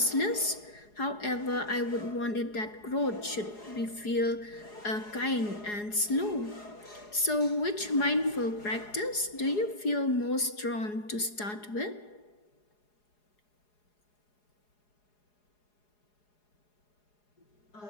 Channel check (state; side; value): late; right; 4.8 ms